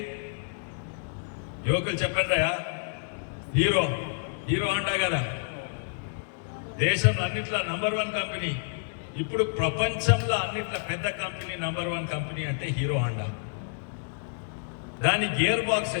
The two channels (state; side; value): silent; right; digital silence